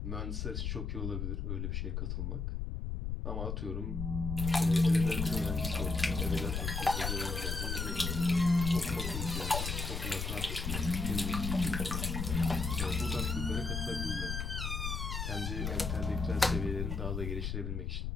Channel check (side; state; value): left; noise; rumble, 2 dB below the sound